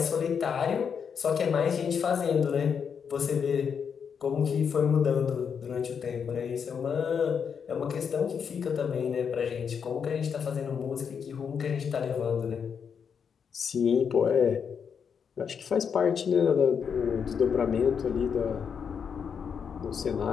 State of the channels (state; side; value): quieter; right; 6.9 dB